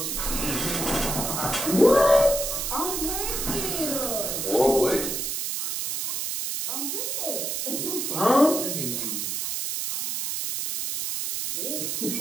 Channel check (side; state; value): right; noise; hiss, 2 dB below the sound